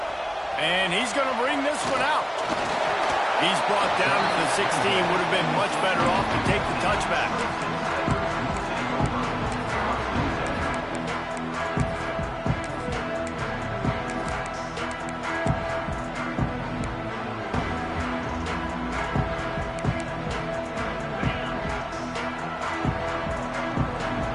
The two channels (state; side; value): identical; both; correlation 1.00